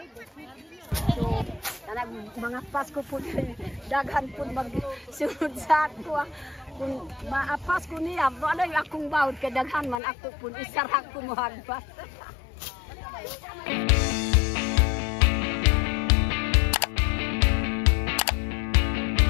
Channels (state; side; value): drops out; right; at 10.0 s